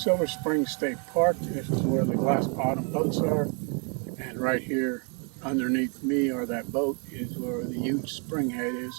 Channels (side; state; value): left; quieter; 36.5 dB